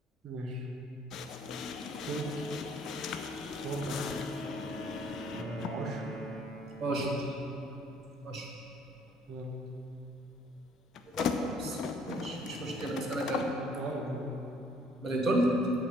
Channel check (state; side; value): normal; both; correlation 0.61